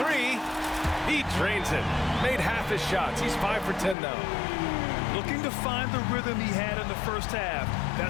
He drains it. Made half his shots. He's 5 for 10 now. Looking to find the rhythm he had in the first half.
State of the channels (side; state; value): right; drops out; at 4.0 s